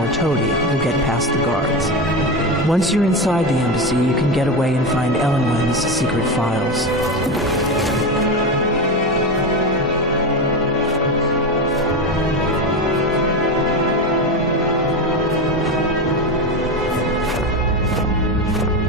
toady, you'll get past the guards. Once you're inside the embassy, you can get away and find Elenwen's secret files.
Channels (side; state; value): both; normal; correlation 0.18